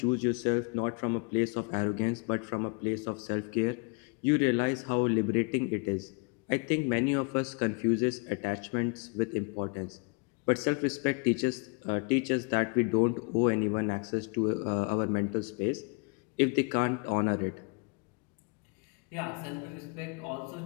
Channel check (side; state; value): right; quieter; 33.9 dB